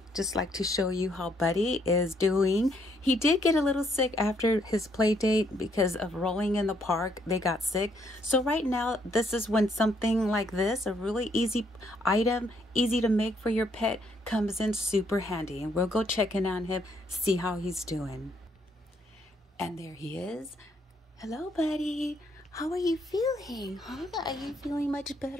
just like to show you how Buddy is doing. He did get a little sick after his play date because of rolling in the park. They got sick. So right now, this is when something like this, a really easy item, easy to make for your pet, comes in super handy. And we'll go check in on him, see how he's doing. And there he is. Hello, Buddy. How are you feeling? Huh? Are you feeling much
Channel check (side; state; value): both; normal; correlation 0.70